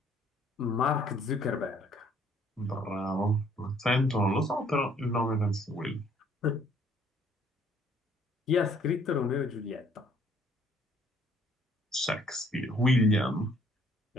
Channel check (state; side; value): normal; both; correlation 0.62